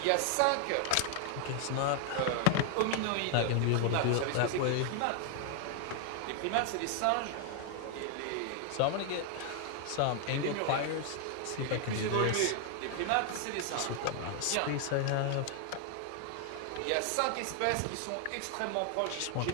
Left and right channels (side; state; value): both; different; correlation 0.00